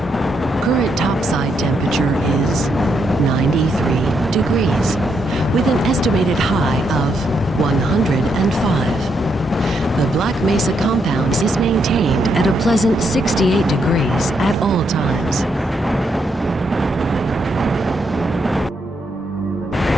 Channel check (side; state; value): both; normal; correlation 0.78